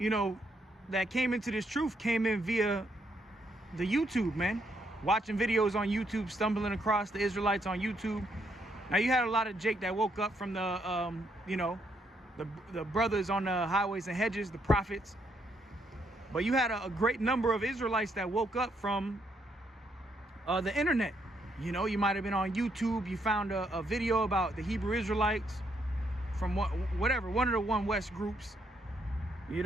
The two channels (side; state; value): both; normal; correlation 0.75